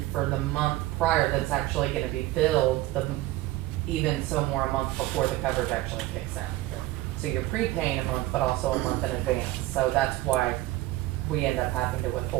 for the month prior that's actually gonna be billed, even so more a month before the coverage actually kicks in. So you're prepaying a month, but also a month in advance, so that's why we end up having to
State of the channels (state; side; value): quieter; left; 17.2 dB